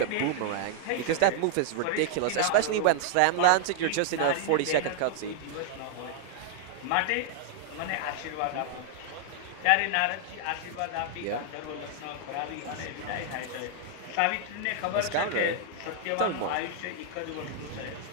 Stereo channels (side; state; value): both; different; correlation 0.00